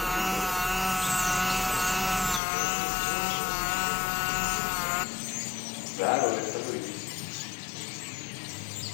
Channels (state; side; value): drops out; right; at 2.4 s